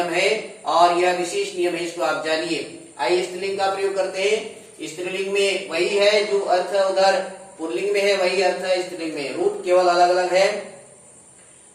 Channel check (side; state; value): both; identical; correlation 1.00